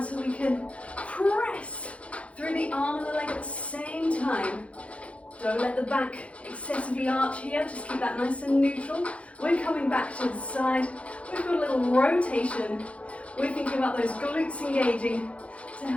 we can press through the arm and the leg at the same time. Don't let the back excessively arch here, just keep that nice and neutral. We're coming back to the side. We've got a little rotation. We're thinking about those glutes engaging to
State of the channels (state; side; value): late; right; 0.063 ms